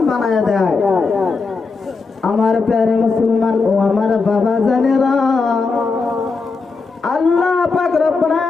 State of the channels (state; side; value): quieter; right; 4.4 dB